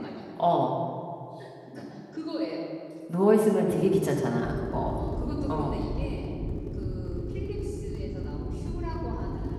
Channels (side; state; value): both; identical; correlation 1.00